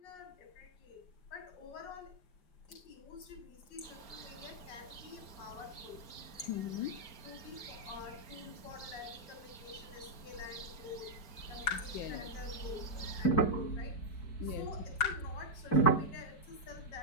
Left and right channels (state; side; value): late; right; 4.3 ms